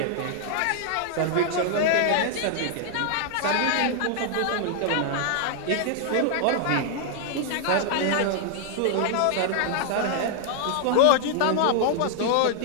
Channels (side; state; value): both; different; correlation -0.01